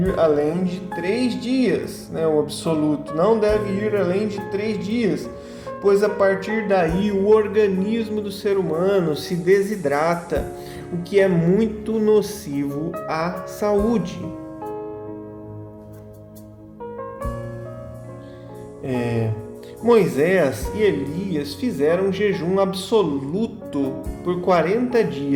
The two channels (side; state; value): both; identical; correlation 1.00